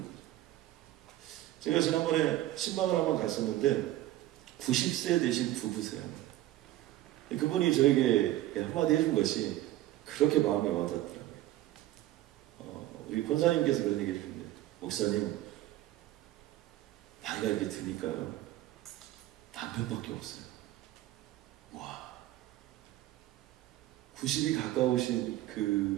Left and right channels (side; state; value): left; quieter; 14.7 dB